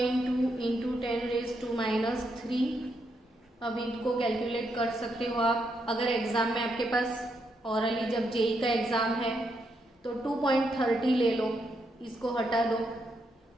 two into 10⁻³ अब इनको कैलकुलेट कर सकते हो आप। अगर एग्जाम में आपके पास ऑरली जब जेई का एग्जाम है तो 2.30 ले लो, इसको हटा दो,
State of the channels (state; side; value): normal; both; correlation 0.79